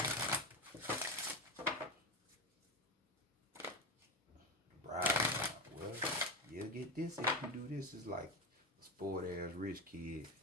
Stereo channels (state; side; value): normal; both; correlation 0.18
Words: Bribe. Well, you'll get this if you do this. It's like a spoiled ass rich kid